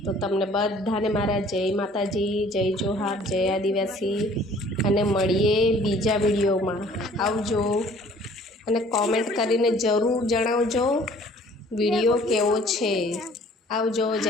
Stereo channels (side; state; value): both; normal; correlation 0.54